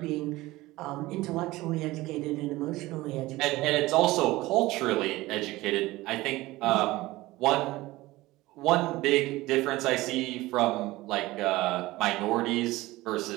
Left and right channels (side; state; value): left; quieter; 18.9 dB